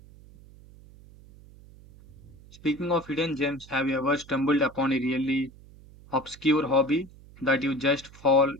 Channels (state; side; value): noise; right; hum, 22 dB below the sound